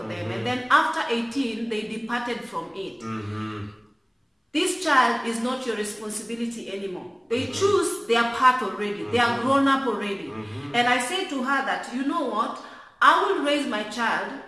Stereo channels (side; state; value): both; identical; correlation 1.00